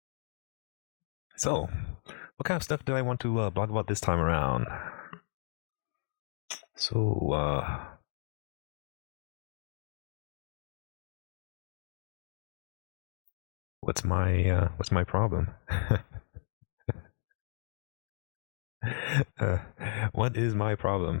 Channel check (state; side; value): silent; right; digital silence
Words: So, what kind of stuff do I want to blog about this time around? So, what's my problem? What is my